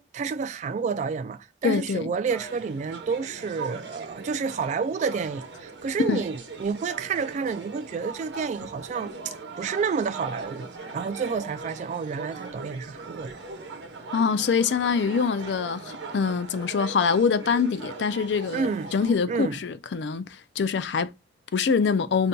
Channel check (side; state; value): both; normal; correlation 0.17